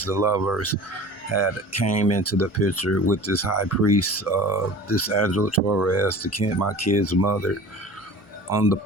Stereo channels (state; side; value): normal; both; correlation 0.40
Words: the lovers, had came into the picture with this high priest, this Angela Torres, my kid's mother, on the